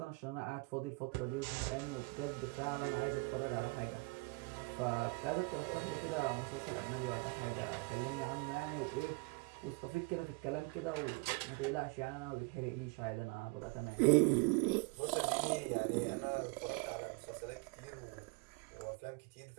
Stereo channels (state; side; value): quieter; left; 28.0 dB